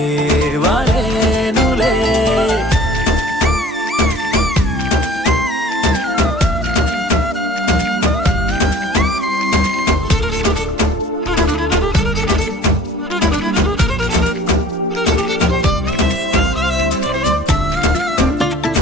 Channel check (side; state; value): both; normal; correlation 0.49